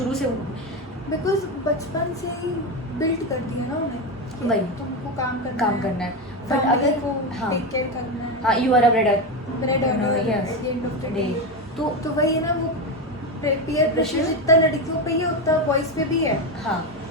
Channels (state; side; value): normal; both; correlation 0.14